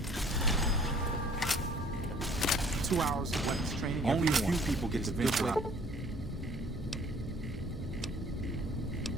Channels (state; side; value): normal; both; correlation 0.55